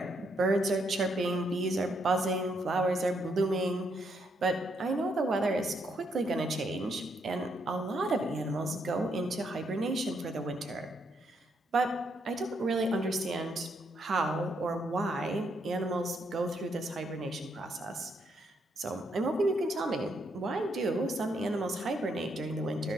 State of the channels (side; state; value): both; normal; correlation 0.75